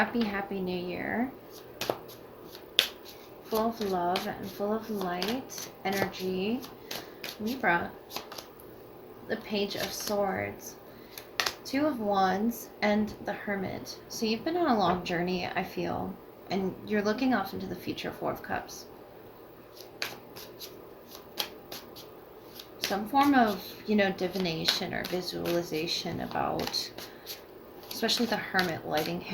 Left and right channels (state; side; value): identical; both; correlation 1.00